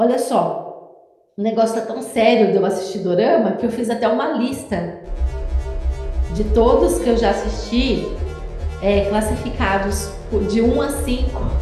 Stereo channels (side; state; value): both; identical; correlation 1.00